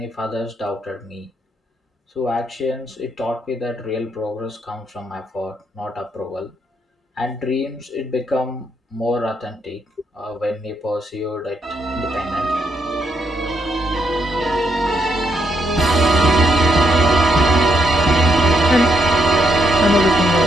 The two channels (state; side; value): normal; both; correlation 0.76